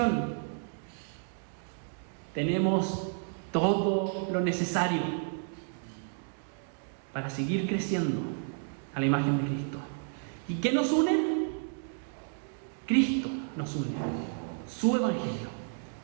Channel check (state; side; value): silent; left; digital silence